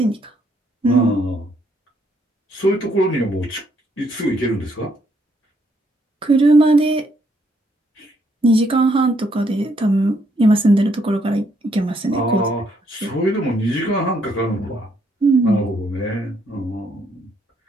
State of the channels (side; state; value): both; normal; correlation 0.72